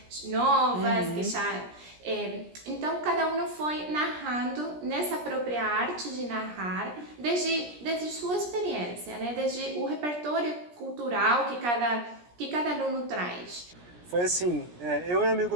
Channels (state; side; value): late; left; 17 ms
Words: novas, que já... então cada um foi narrando nessa própria arte de narrar, desde sua experiência, né? Desde o repertório cultural que cada aluno traz. Foi assim, eu e um